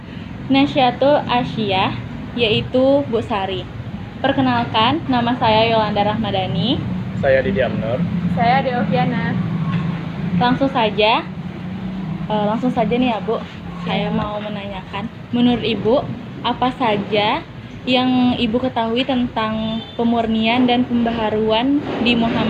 Nasyatul Asyiyah, yaitu Bu Sari. Perkenalkan, nama saya Yolanda Rahmadani. Saya Didi Amnur. Saya Deoviana. Langsung saja nih ya Bu. Saya mau menanyakan, menurut Ibu, apa saja yang Ibu ketahui tentang pemurnian dan pembaharuan di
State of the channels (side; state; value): both; identical; correlation 1.00